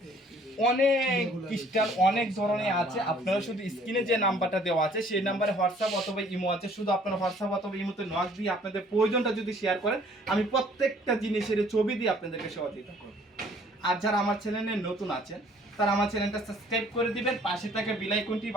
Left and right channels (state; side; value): normal; both; correlation 0.57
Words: অনেক ক্রিস্টাল অনেক ধরনের আছে, আপনারা শুধু স্ক্রিনে যে নাম্বারটা দেওয়া আছে সেই নাম্বারে হোয়াটসঅ্যাপ অথবা ইমো আছে, শুধু আপনারা হোয়াটসঅ্যাপ অথবা ইমোতে নক দিয়ে আপনাদের প্রয়োজনটা যদি শেয়ার করেন, আমি প্রত্যেকটা জিনিসের ছবি দিয়ে আপনাদেরকে সহযোগিতা করব। আর যারা আমার চ্যানেলে নতুন আছেন তারা আমার চ্যানেলটা সাবস্ক্রাইব করে দিবেন, পাশে থাকা বেল আইকনটি